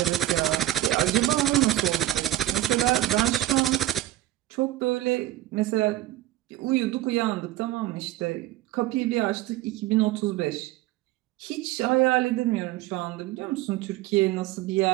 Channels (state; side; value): quieter; left; 14.8 dB